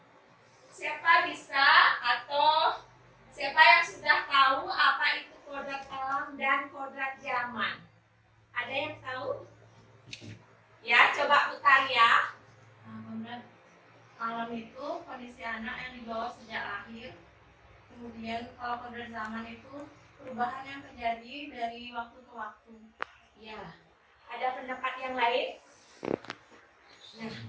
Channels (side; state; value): both; identical; correlation 1.00